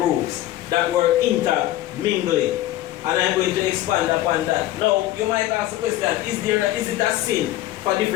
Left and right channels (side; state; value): right; quieter; 14.9 dB